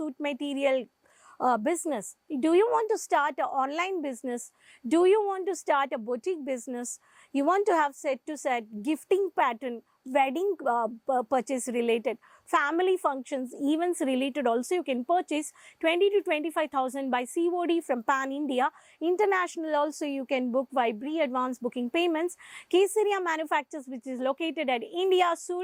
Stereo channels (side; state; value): both; identical; correlation 1.00